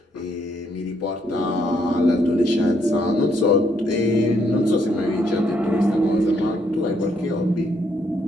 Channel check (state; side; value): normal; both; correlation 0.72